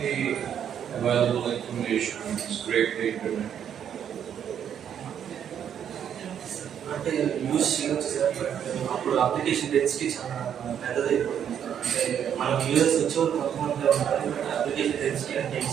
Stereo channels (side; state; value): left; quieter; 9.0 dB